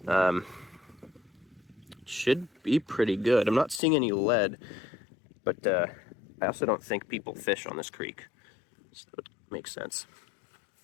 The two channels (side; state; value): right; drops out; at 3.8 s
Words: should be pretty good. I'm not seeing any lead, but I also don't think people fish on this creek. So it makes sense.